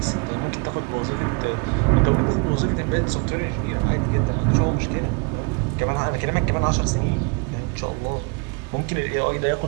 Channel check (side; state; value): left; quieter; 33.3 dB